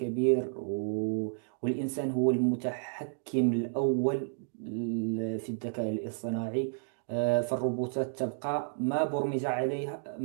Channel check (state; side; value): silent; left; digital silence